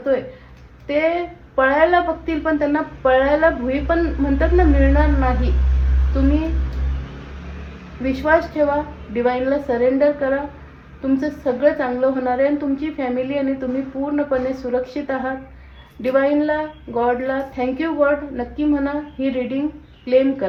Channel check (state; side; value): identical; both; correlation 1.00